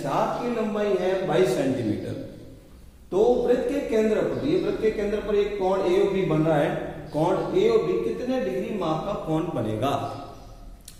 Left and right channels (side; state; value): both; identical; correlation 1.00